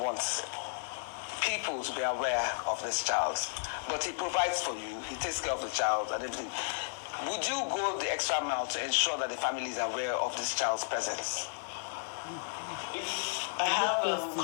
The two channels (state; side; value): silent; right; digital silence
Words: people to be aware of this child, but he provides for you, he takes care of the child and everything, would you go the extra mile to ensure that the family is aware of this child's presence? I have